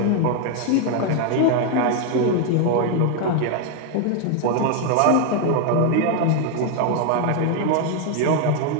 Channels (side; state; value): both; different; correlation 0.01